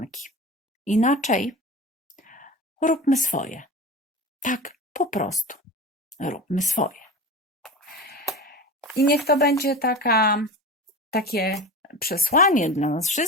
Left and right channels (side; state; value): both; normal; correlation 0.30